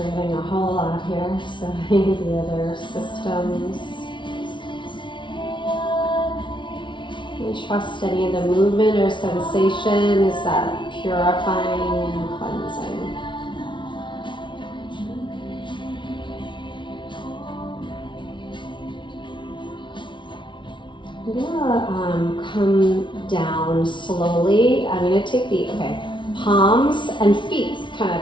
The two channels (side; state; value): right; late; 0.24 ms